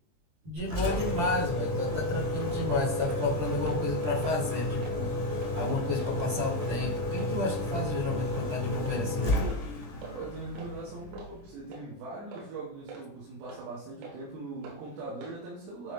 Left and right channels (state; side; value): late; left; 20 ms